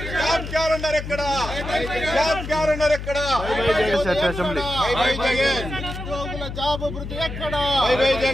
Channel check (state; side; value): noise; left; hum, 8 dB below the sound